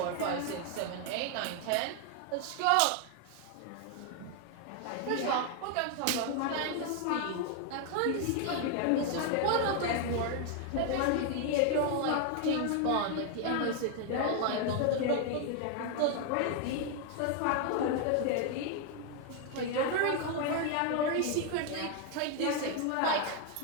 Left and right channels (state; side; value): different; both; correlation 0.00